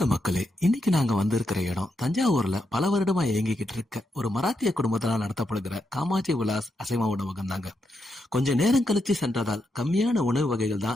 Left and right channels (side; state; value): both; normal; correlation 0.83